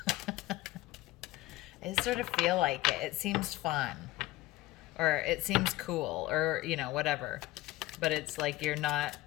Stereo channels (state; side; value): quieter; right; 17.7 dB